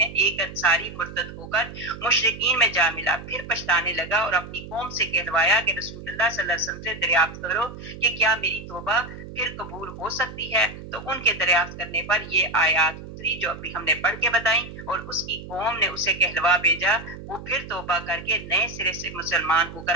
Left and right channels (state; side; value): noise; right; hum, 13 dB below the sound